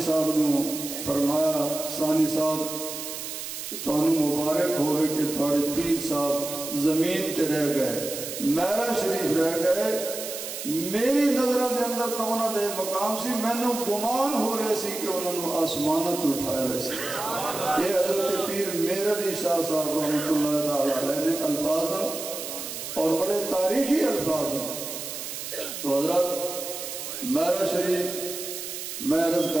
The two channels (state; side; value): noise; right; hiss, 7 dB below the sound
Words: صاحب نے فرمایا ثانی صاحب تانوں مبارک ہوئے کہ تھوڑے پیر صاحب زمین تے رہ گئے میرا شریف رہ گئے میری نظروں دے اندر تو انہوں دے مقام سی میں نے گمان ہو رہے سی کہ انہوں نے آسمانت اٹھائے ویسے یہ حضرت پیر میرا بھی شاہ صاحب رحمت اللہ تعالیٰ علیہ نے الفاظ اور بڑے تاریخی الفاظ ہیں تو حضرت میرا شریف میں عرض کر